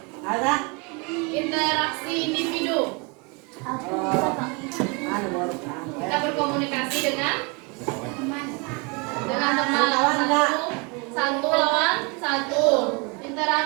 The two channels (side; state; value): left; quieter; 30.8 dB